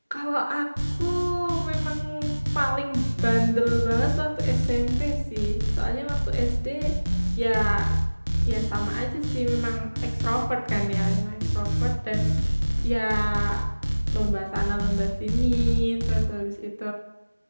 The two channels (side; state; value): both; inverted; correlation -1.00